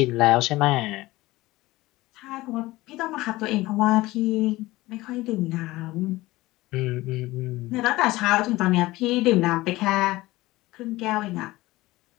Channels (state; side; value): quieter; right; 18.9 dB